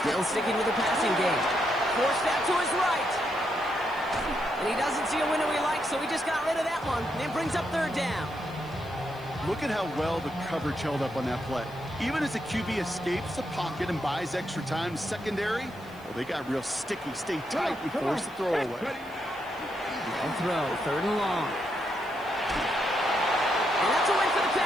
Still sticking with the passing game. Forced out to his right. And he doesn't see a window he likes, so he just got rid of that one. And it brings up 3rd down. Look at how well the coverage held up on that play. Even as the QB escapes the pocket and buys extra time secondary, well, they got real sticky. Stay tight and force the throw away. No throw, 3rd and long. And that's a win for the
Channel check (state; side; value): noise; left; hiss, 26 dB below the sound